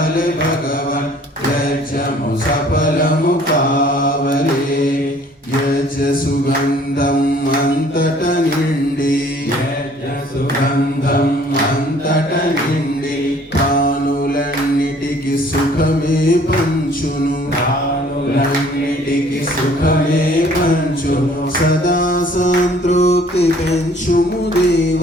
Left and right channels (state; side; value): normal; both; correlation 0.56